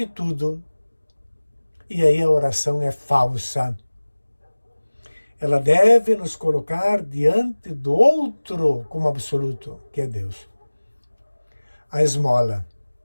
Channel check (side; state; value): both; inverted; correlation -1.00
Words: tudo. E aí a oração é falsa. Ela deve nos colocar diante do outro como absoluto, que é Deus. A esmola